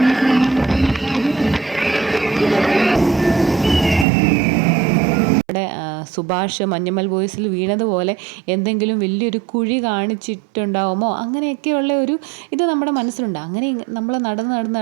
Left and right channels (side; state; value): left; drops out; at 4.0 s